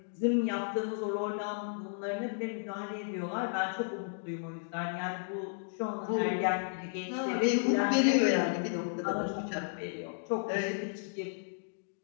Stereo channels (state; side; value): silent; right; digital silence